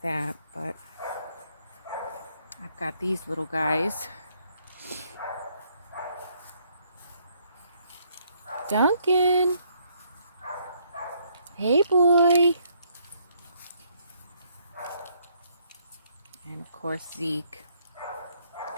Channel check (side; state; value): both; inverted; correlation -0.70